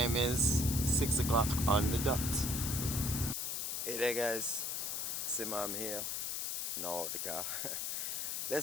is 6 o'clock on the dot. Hey there guys, Simam here. No, the car.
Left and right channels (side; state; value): left; noise; hiss, 1 dB below the sound